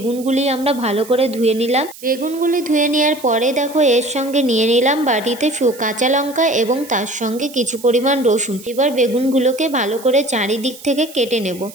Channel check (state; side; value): noise; right; hiss, 18 dB below the sound